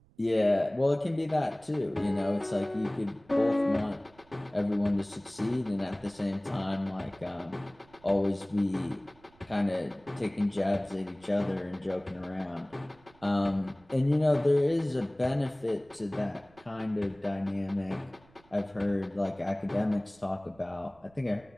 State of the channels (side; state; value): right; noise; rumble, 29 dB below the sound